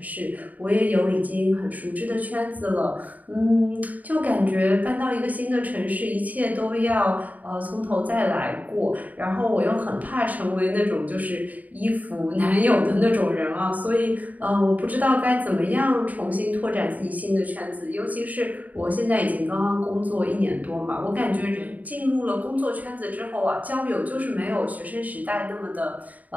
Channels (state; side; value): late; left; 0.075 ms